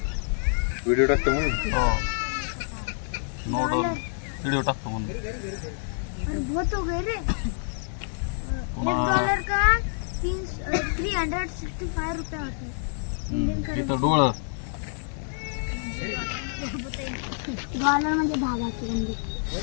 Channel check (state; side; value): silent; right; digital silence